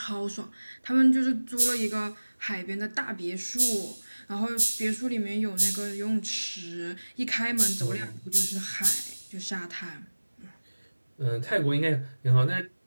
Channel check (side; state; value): both; inverted; correlation -1.00